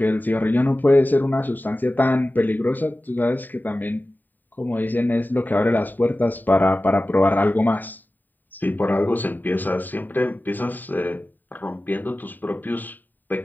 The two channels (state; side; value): late; right; 0.089 ms